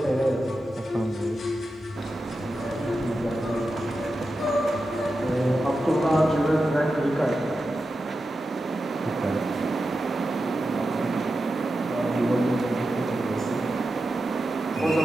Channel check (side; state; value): both; normal; correlation 0.90